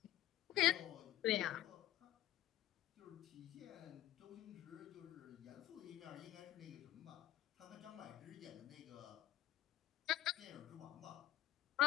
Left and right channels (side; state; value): right; quieter; 13.6 dB